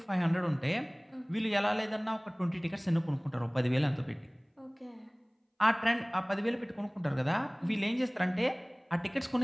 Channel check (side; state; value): both; identical; correlation 1.00